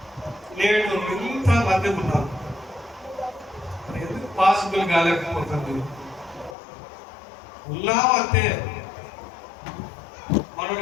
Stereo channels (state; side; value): drops out; right; at 6.6 s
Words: నేడు ఇంత మంది ఉన్నారు. ఎందుకు పాసిబుల్ కాలేకపోతుంది? ఉన్నామంటే